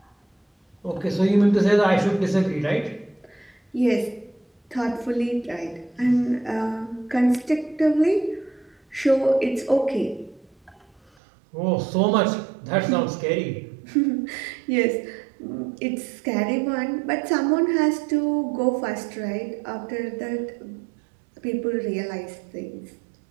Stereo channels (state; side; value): drops out; left; at 11.1 s